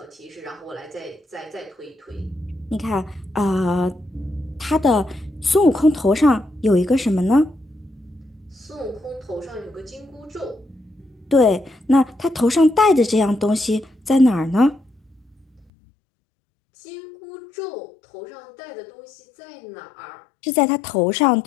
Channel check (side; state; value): right; drops out; at 15.7 s